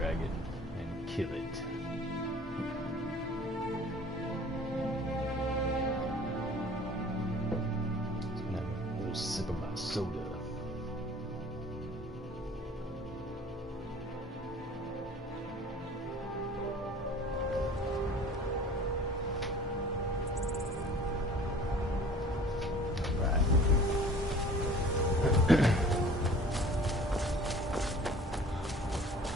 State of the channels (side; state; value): both; normal; correlation 0.47